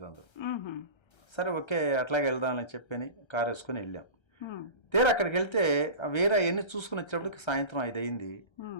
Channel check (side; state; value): right; late; 1.3 ms